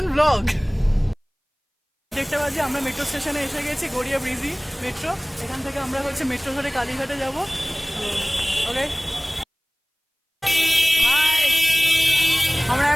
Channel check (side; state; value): both; identical; correlation 1.00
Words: ব্লগ। দেখতে পাচ্ছি আমরা মেট্রো স্টেশনে এসে গেছি, গড়িয়া ব্রিজি মেট্রো। এখান থেকে আমরা হচ্ছে মেট্রো ধরে কালীঘাটে যাব। ওকে, আমরা